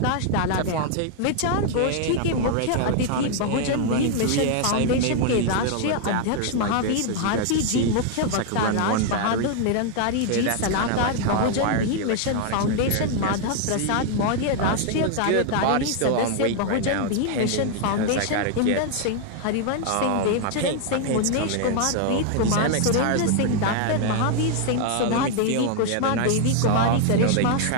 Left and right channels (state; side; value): different; both; correlation 0.00